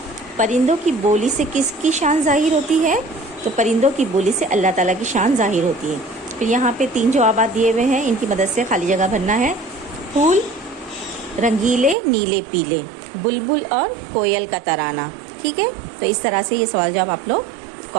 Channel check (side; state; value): left; drops out; at 12.0 s